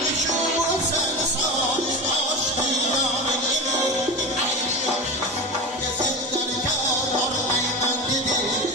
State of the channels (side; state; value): both; normal; correlation 0.25